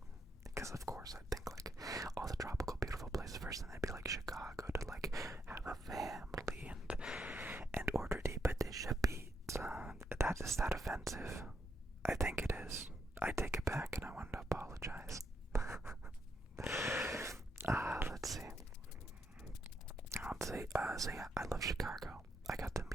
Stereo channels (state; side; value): normal; both; correlation 0.79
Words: Because of course I'd think like person. They'd be like Chicago to like have a family and order the patisha pizza. Is that offensive? I think it is. I take it back and I want to apologize. Let's see. So yeah, I love Chicago. I got to